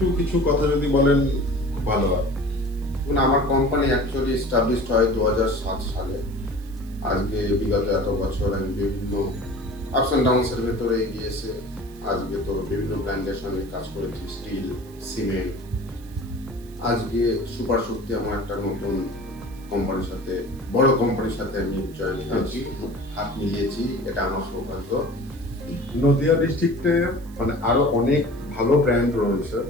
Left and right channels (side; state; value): right; noise; hiss, 25 dB below the sound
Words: কিছু কথা যদি বলেন খুব ভালো হয়। আমার কোম্পানি অ্যাকচুয়ালি এস্টাবলিশড হয় 2007 সালে। আজকে বিগত এত বছর আমি বিভিন্ন আপস অ্যান্ড ডাউনসের ভেতরে গিয়েছে। আজকে তো বিভিন্ন ব্র্যান্ডের সঙ্গে কাজ করেছি, স্টিল, সিমেন্ট। আজকে সুপার শক্তি আমার একটা নতুন কোম্পানির সাথে, বড় কোম্পানির সাথে আমি জয়েন হয়েছি, হাত মিলিয়েছি। এটা আমার সৌভাগ্য। নদিয়া ডিস্ট্রিক্টে মানে আরো অনেক ভালো ব্র্যান্ড রয়েছে